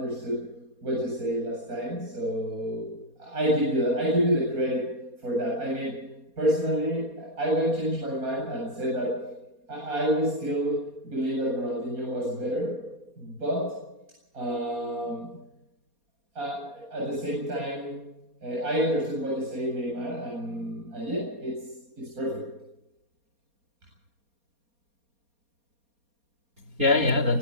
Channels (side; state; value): left; late; 4.2 ms